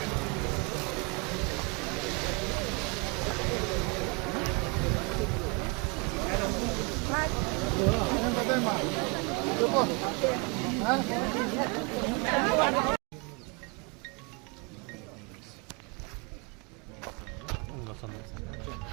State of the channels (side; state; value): left; quieter; 31.2 dB